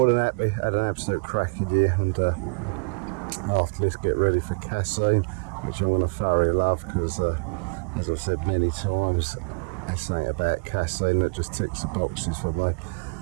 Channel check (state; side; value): quieter; left; 33.7 dB